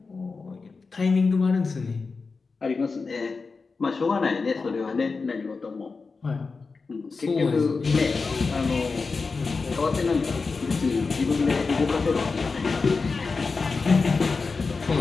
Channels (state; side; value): quieter; right; 4.4 dB